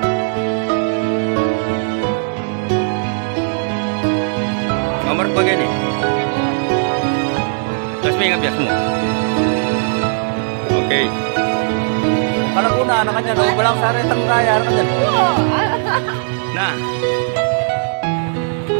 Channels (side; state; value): left; silent; digital silence